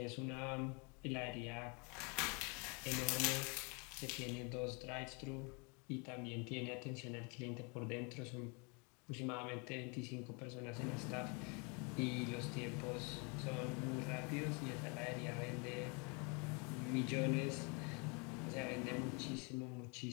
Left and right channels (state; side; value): quieter; right; 32.8 dB